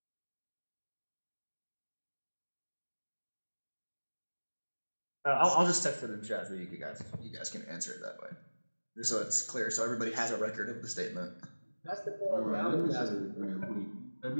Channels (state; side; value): inverted; both; correlation -1.00